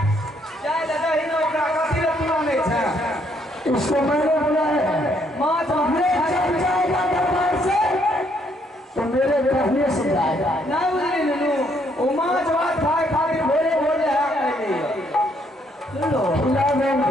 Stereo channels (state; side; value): normal; both; correlation 0.70